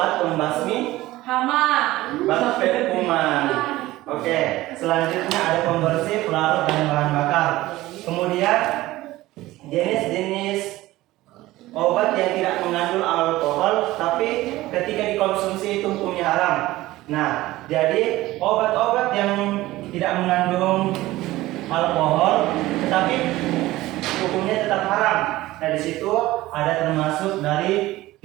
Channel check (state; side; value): quieter; left; 17.3 dB